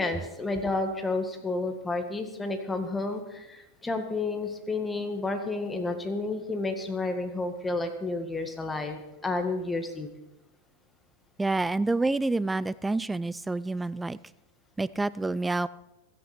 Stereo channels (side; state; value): both; normal; correlation 0.77